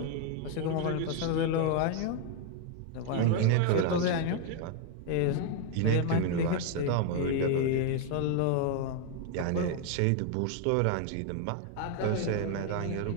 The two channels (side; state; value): both; different; correlation 0.00